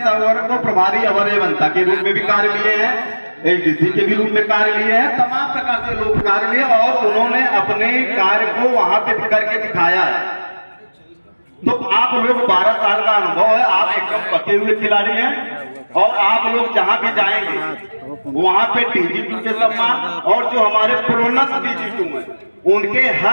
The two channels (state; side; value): inverted; both; correlation -1.00